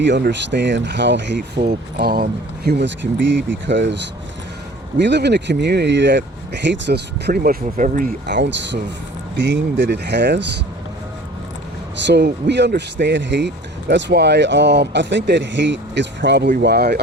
understand how hateful humans can be because we live in a community that hates us pretty much with every ounce of being that it has. So we understand hate. That's why I think that hate is probably why,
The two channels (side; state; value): both; normal; correlation 0.46